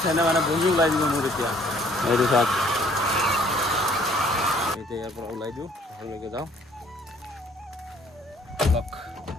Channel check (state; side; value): normal; both; correlation 0.60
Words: চেণ্টে মানে বহি ওলাই দিব মোৰ এতিয়া এইটো চাওক এতিয়া ইয়াৰ পৰা ওলাই দিওঁ ঘৰলৈকে যাওঁ অলপ